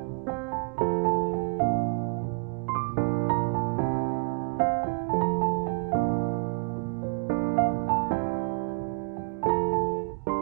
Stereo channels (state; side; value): quieter; left; 37.0 dB